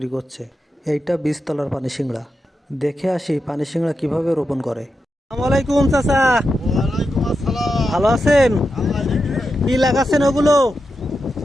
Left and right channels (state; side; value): normal; both; correlation 0.88